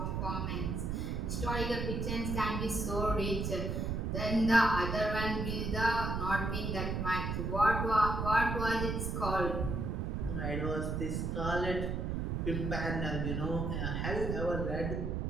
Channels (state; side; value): noise; right; rumble, 1 dB below the sound